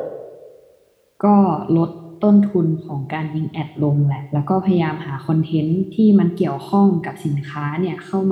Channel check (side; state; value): both; identical; correlation 1.00